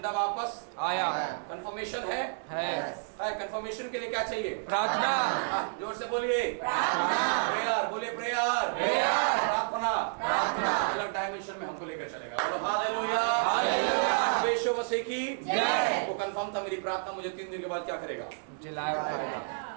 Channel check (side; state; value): left; silent; digital silence